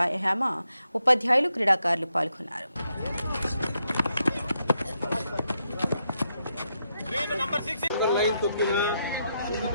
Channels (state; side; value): inverted; both; correlation -0.81